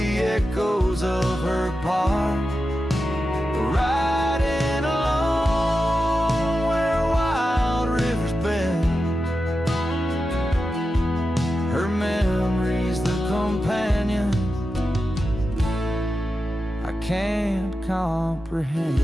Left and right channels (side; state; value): both; normal; correlation 0.91